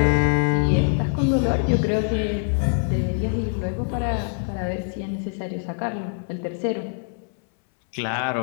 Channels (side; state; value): right; silent; 63 dB below the other